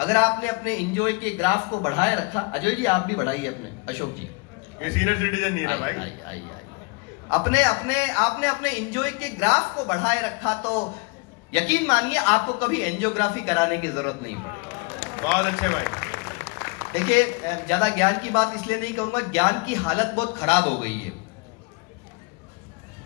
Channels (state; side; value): quieter; right; 29.4 dB